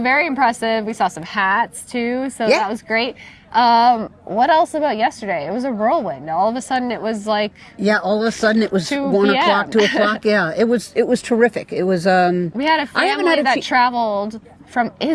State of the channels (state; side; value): identical; both; correlation 1.00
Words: very impressive. We saw some hats too, so Yeah. that was great. What else about yesterday? It was a whirlwind. All of a sudden it was like All of a sudden it was 2 1 p.m. o'clock, 2 o'clock. Yeah, it was terrific. It was. we had a I haven't family had a that traveled from from